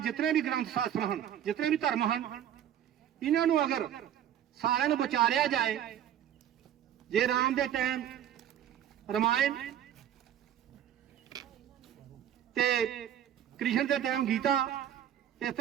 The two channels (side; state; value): left; quieter; 10.4 dB